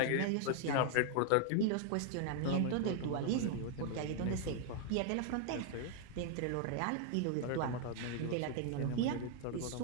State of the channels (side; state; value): both; different; correlation 0.00